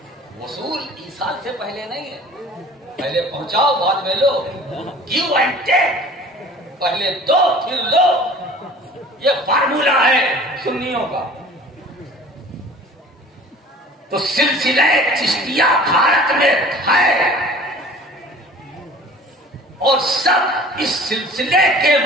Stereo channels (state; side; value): normal; both; correlation 0.45